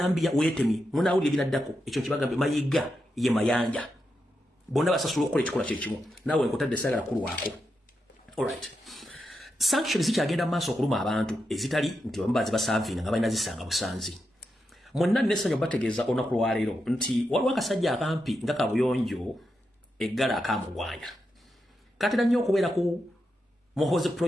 wetemi munawulira binaddako ekyo kibagambe mayiga ye mayanja bonna basasula okukola ekikola kyekimu naawe nkutadde sagala kulu wako. Alright, sanctions zikyagenda maaso okuluma abantu ezitali nti bambazi basavinga nga balina zisanga busanzi. Monna nessanyo bategeeza olunaku lwaleero nti waliwo akasajja akampi nga kabuyonjo eggala akamugwanya katera nnyo okubeera ku Muhoozi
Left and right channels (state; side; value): normal; both; correlation 0.86